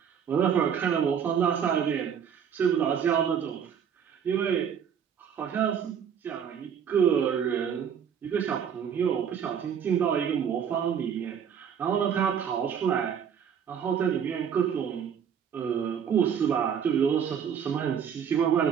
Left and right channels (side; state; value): left; quieter; 7.9 dB